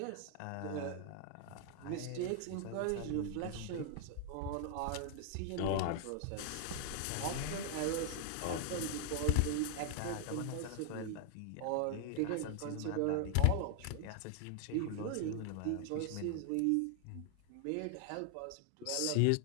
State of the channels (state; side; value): different; both; correlation 0.00